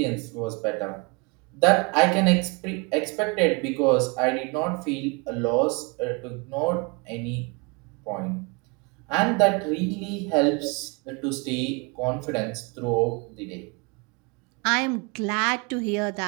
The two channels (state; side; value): quieter; left; 29.2 dB